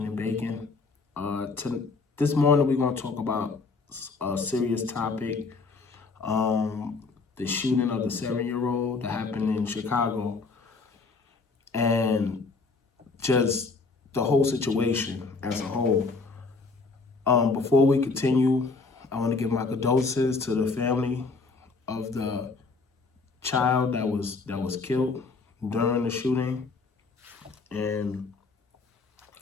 and baking. This morning we're gonna talk about a serious topic. The shooting of the 7-year-old that happened in Chicago, and just the whole situation as a whole. Before we continue, I want to give my condolences to the family of the child that was killed during the shooting, and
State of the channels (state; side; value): quieter; right; 4.1 dB